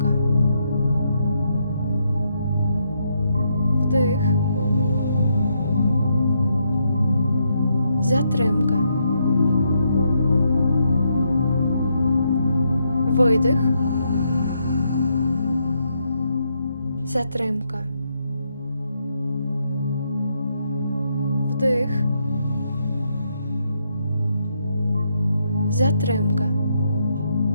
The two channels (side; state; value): both; inverted; correlation -0.78